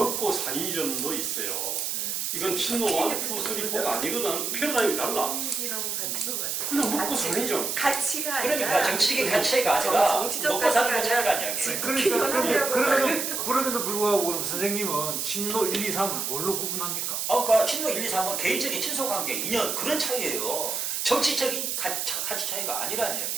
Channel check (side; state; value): right; noise; hiss, 1 dB below the sound